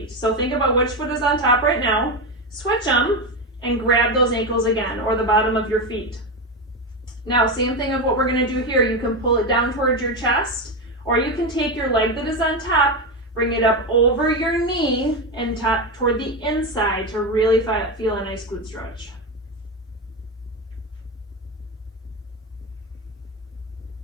So think about which foot is on top right now, switch them, and grab those ankles again, or the bottom of your feet. Now, same thing of what we're gonna do here. You can pull it down towards your chest, or you can take your leg that is on top, bring it up over your knee, and toward the inside to really feel a nice glute stretch.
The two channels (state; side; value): normal; both; correlation 0.15